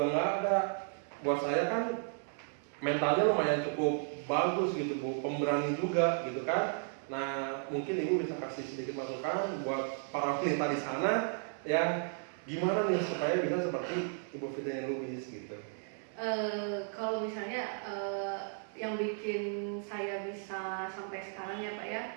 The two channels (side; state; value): left; silent; 55 dB below the other